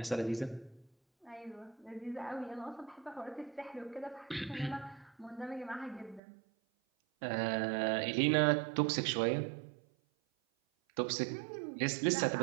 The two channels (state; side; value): drops out; left; at 6.2 s